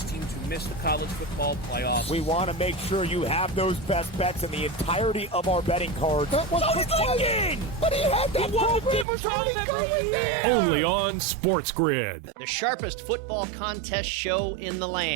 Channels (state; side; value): drops out; left; at 9.1 s